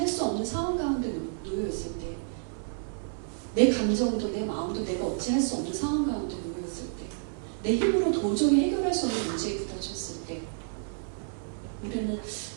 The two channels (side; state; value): left; silent; digital silence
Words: 수 없는 상황 가운데 놓여있을 때, 내 감정도 내 마음도 내가 어찌 할 수 없는 상황 가운데 놓여있을 때, 내 힘으로 도저히 해결할 수 없는 문제에 부딪혔을 때, 우리는